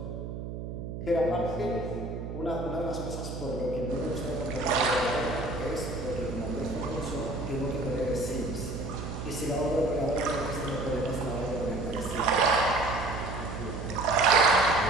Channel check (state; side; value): noise; right; hum, 7 dB below the sound